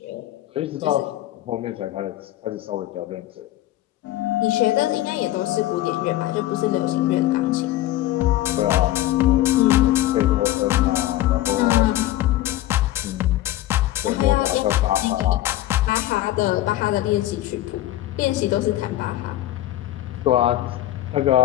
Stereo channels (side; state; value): right; quieter; 14.7 dB